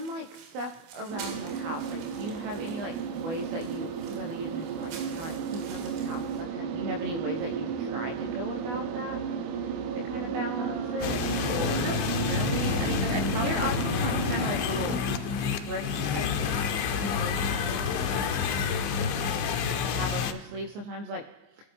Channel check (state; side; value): late; left; 24 ms